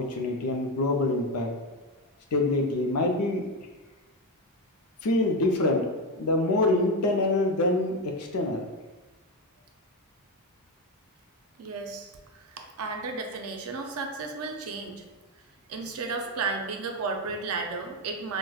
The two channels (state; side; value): normal; both; correlation 0.13